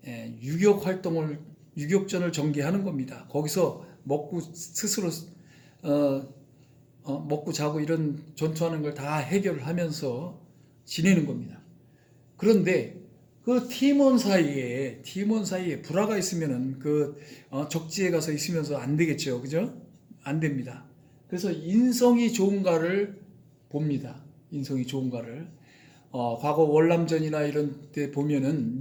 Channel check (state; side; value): identical; both; correlation 1.00